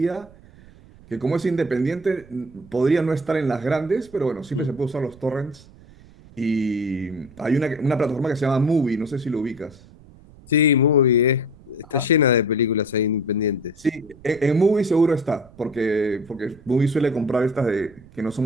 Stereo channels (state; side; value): noise; right; rumble, 23 dB below the sound